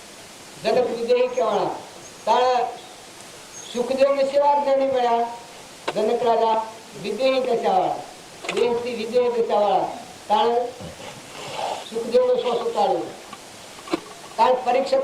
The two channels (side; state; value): both; identical; correlation 1.00